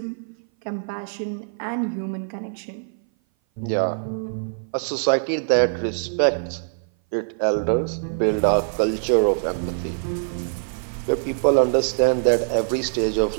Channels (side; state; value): left; silent; 58 dB below the other